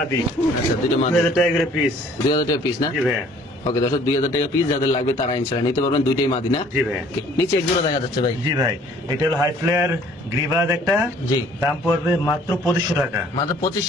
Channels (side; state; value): both; normal; correlation 0.56